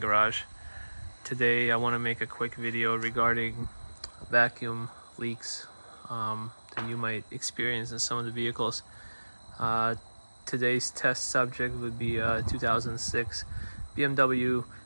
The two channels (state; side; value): inverted; both; correlation -1.00